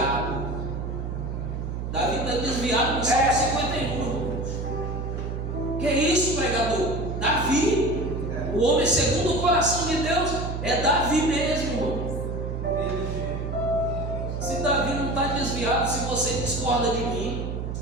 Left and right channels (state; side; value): noise; right; hum, 4 dB below the sound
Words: Davi está desviado no salmo 51. Que é isso, pregador? Davi, o homem segundo o coração de Deus, é Davi mesmo, irmão. Se Davi não está desviado, se você discorda de mim,